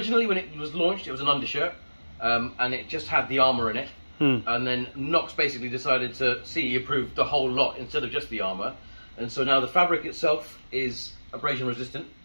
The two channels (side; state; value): both; inverted; correlation -1.00